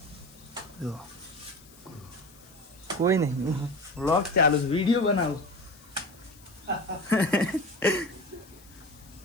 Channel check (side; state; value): left; noise; hiss, 24 dB below the sound